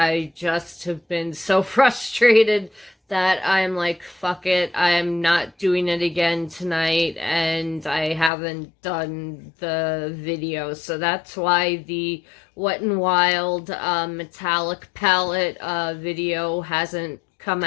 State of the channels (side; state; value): right; drops out; at 8.3 s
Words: just have been so frustrated that I'm like, fuck it, I'm not doing it again tonight, and I haven't done the video. So that's why the Wet n Wild metallic palette video hasn't come